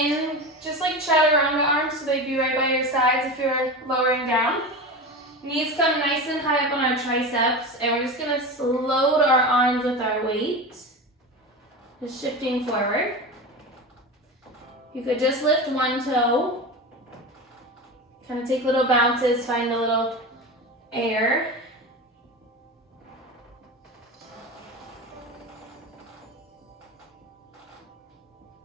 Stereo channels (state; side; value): normal; both; correlation 0.26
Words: just like chaturanga arms, so they'd be right by your sides if you're lowering down. Knees come nice and high up on our triceps, and we're just going to load our arms with our weight. Just shifting forward. You could just lift one toe. Kind of take little bounces, find a little air.